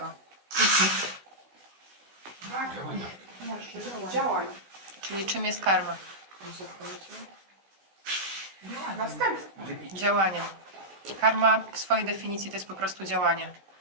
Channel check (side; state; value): left; late; 16 ms